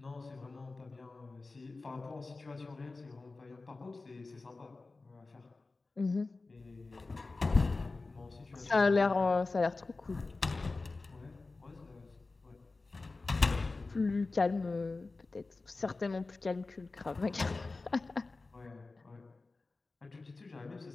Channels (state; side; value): quieter; right; 3.6 dB